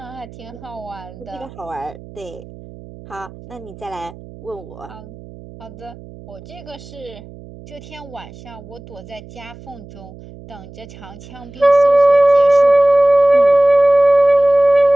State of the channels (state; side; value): noise; right; hum, 18 dB below the sound